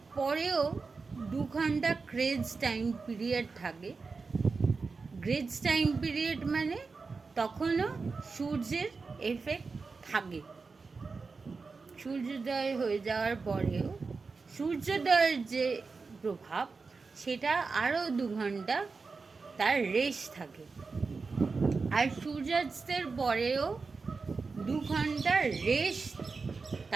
পরেও 2 ঘন্টা গ্রেজ টাইম পিরিয়ড থাকে। গ্রেজ টাইম পিরিয়ড মানে তখনও সূর্যের এফেক্ট থাকে। সূর্যোদয় হয়ে যাওয়ার পরেও সূর্যোদয়ের যে প্রভাব সেটা আরও 2 ঘন্টা তার রেশ থাকে। আর সূর্যাস্তের পরেও 2 ঘন্টা রেশ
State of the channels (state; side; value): quieter; left; 4.4 dB